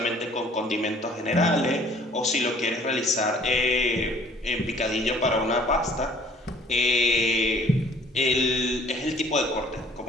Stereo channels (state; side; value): normal; both; correlation 0.55